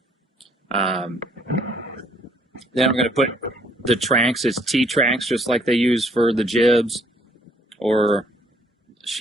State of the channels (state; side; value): normal; both; correlation 0.64